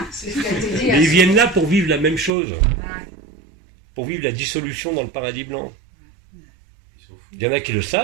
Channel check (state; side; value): drops out; left; at 2.3 s